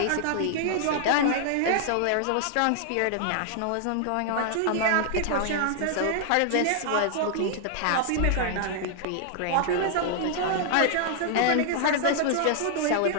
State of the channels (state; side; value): different; both; correlation 0.00